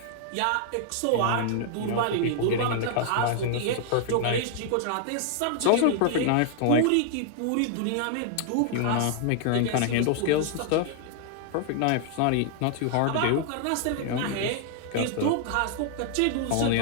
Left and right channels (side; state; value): both; different; correlation 0.00